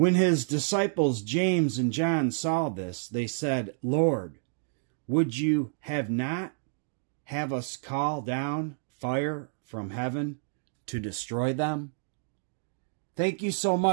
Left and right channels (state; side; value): silent; left; digital silence